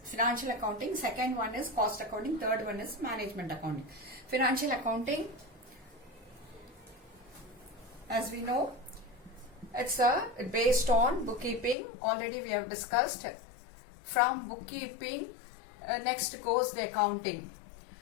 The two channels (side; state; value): right; drops out; at 11.8 s